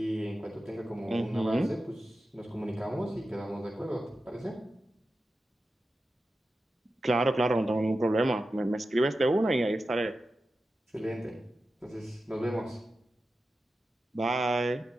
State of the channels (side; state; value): both; normal; correlation 0.92